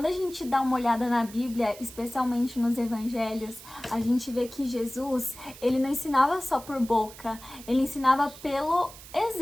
a gente dá uma olhada na Bíblia, especialmente nos evangelhos, a gente vê que Jesus, ele não ensinava só por boca, ele ensinava pelo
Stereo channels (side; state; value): right; noise; hiss, 17 dB below the sound